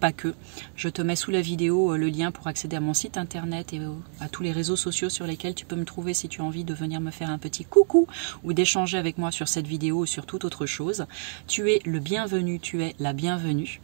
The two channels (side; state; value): left; silent; digital silence